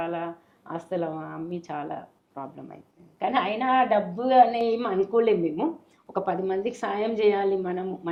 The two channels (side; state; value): both; identical; correlation 1.00